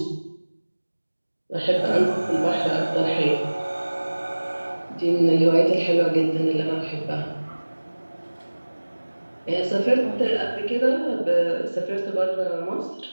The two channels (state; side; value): inverted; both; correlation -1.00